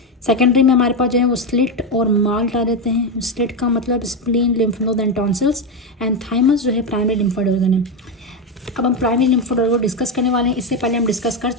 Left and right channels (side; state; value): both; normal; correlation 0.10